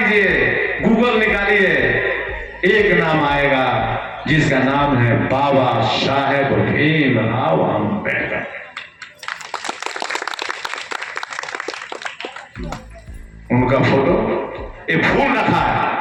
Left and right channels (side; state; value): both; identical; correlation 1.00